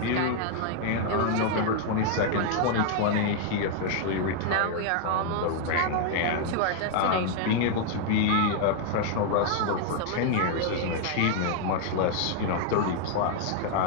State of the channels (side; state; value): both; different; correlation 0.00